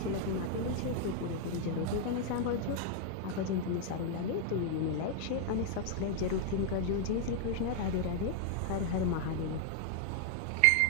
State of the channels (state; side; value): different; both; correlation 0.00